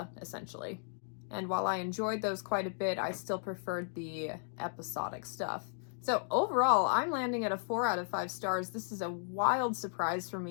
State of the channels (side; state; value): right; silent; digital silence